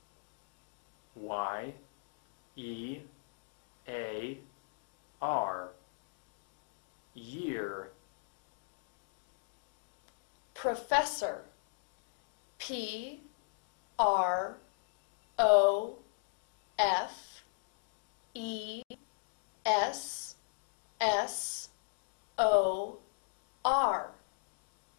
Y E A R. Year. Professor. P R O F E S S O R.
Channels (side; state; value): right; silent; digital silence